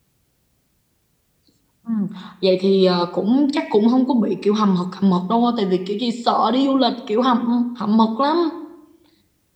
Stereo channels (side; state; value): both; identical; correlation 1.00